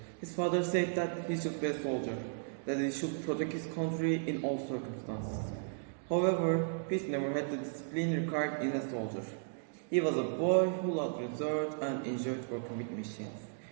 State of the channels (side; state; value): left; silent; digital silence